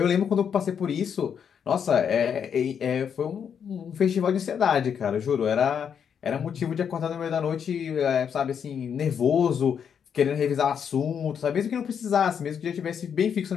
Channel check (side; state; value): right; quieter; 7.6 dB